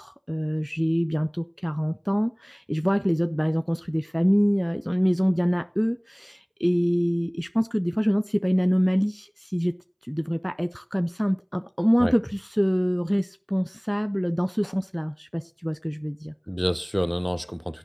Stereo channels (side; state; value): both; identical; correlation 1.00